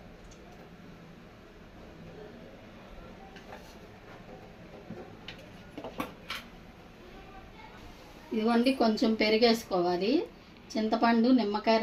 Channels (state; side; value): identical; both; correlation 1.00